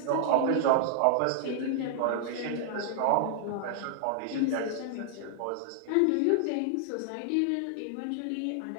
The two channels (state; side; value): different; both; correlation 0.00